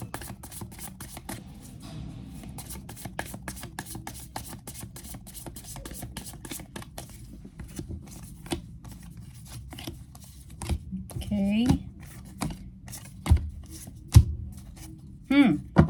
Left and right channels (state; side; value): identical; both; correlation 1.00